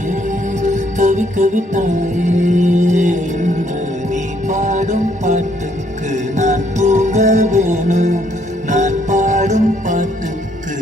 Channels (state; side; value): normal; both; correlation 0.69